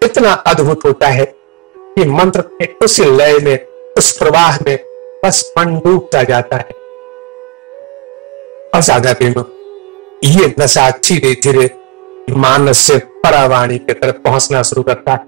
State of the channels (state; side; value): quieter; left; 24.7 dB